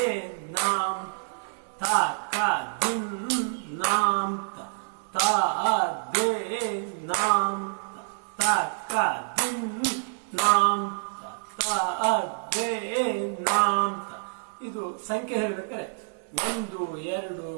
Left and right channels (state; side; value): silent; left; 60 dB below the other